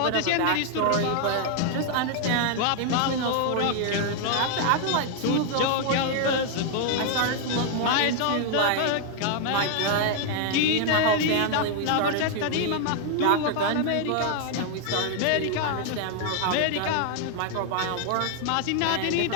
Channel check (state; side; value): different; both; correlation 0.00